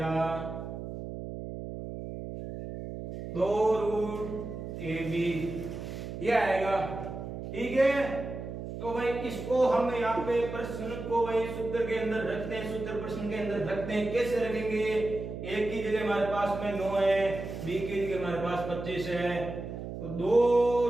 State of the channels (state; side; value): noise; right; hum, 8 dB below the sound